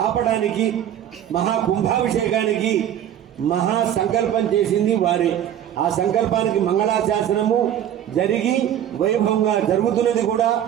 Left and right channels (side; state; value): left; quieter; 10.5 dB